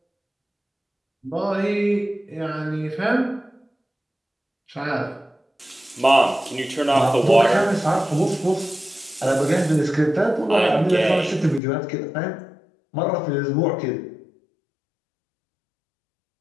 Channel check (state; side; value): drops out; right; at 11.6 s